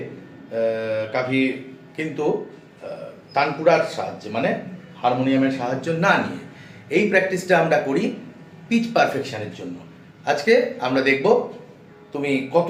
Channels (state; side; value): identical; both; correlation 1.00